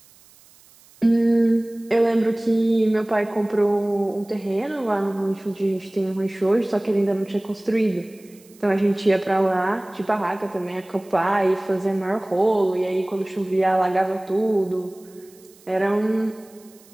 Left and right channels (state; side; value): noise; right; hiss, 27 dB below the sound